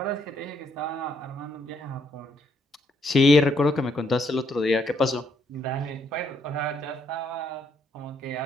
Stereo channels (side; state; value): both; normal; correlation 0.72